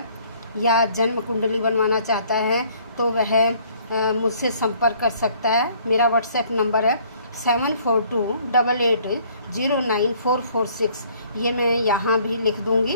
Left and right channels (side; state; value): both; inverted; correlation -0.60